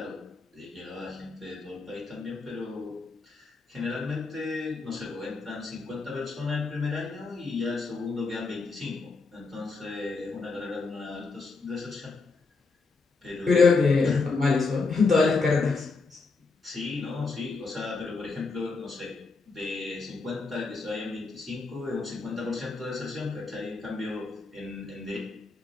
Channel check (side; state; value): right; quieter; 4.1 dB